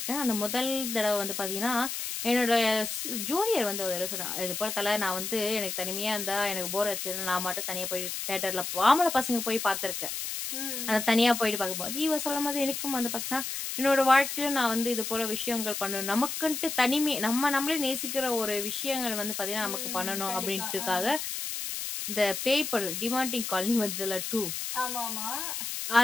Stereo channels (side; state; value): left; noise; hiss, 4 dB below the sound